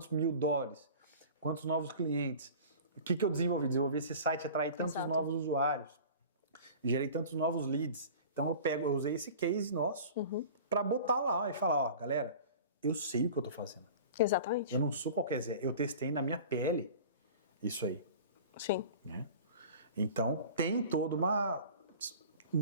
$1.000, quantos novos clientes, o que eu desenvolvi? Desenvolvi esse site, atrair tantos Exato. novos usuários, gerei tantos novos leads. Então eu usei esse case nosso para botar lá e falar, ó, galera, eu sei o que eu tô fazendo. Exatamente. Eu não sou qualquer Zé, eu testei na minha pele isso aí, Sim. né? Então tem todo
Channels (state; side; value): inverted; both; correlation -0.40